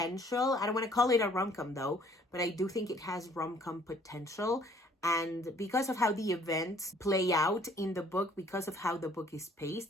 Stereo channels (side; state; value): both; normal; correlation 0.59